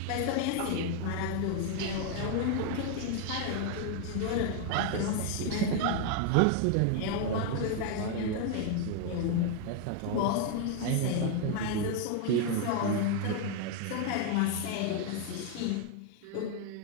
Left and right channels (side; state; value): both; different; correlation 0.01